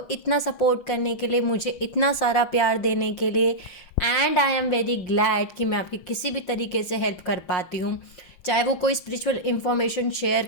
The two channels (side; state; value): right; late; 5.6 ms